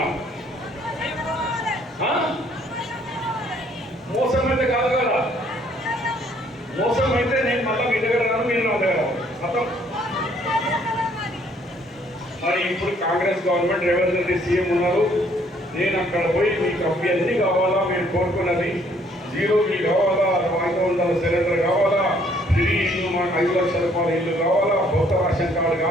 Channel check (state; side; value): normal; both; correlation 0.64